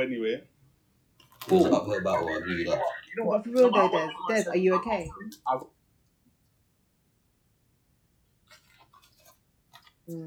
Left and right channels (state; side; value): identical; both; correlation 1.00